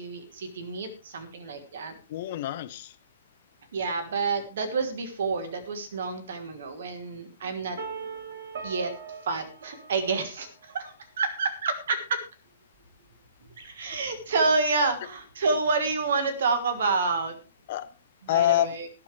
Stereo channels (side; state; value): both; inverted; correlation -0.56